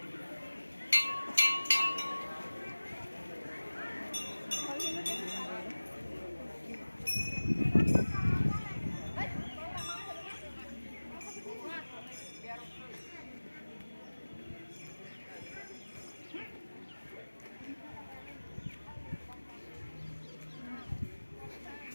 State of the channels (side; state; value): both; inverted; correlation -1.00